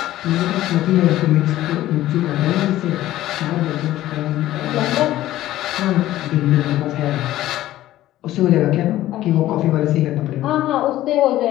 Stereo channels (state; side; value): quieter; right; 14.6 dB